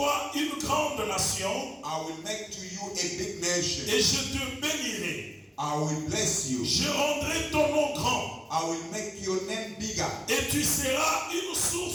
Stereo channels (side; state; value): both; identical; correlation 1.00